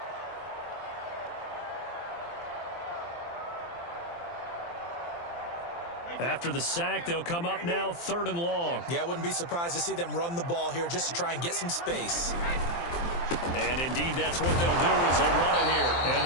After the sack, they'll come up now third and long. Yeah, I wouldn't be surprised to see them run the ball here just to try and get some space. And indeed, that's what they'll do as they run it here. And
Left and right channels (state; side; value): late; right; 23 ms